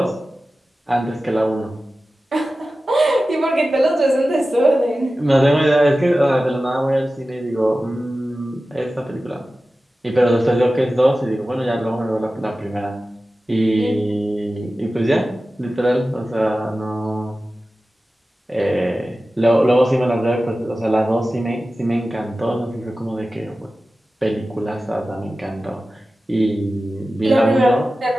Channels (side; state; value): both; normal; correlation 0.95